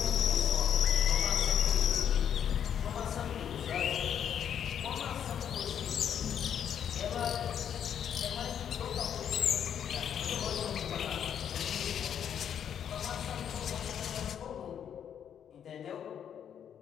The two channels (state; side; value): quieter; right; 8.8 dB